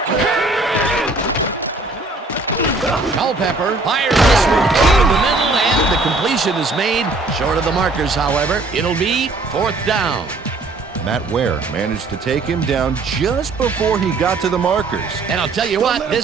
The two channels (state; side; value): quieter; left; 3.3 dB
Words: Culpepper fires this one over the middle, and the completion is made. Short of the markers, however. It'll be 4th down. Matt Ware managed to take him down just before he got to the markers. And I'll tell you what,